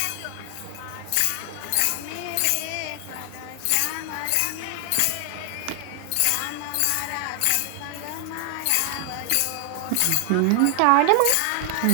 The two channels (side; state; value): both; different; correlation 0.00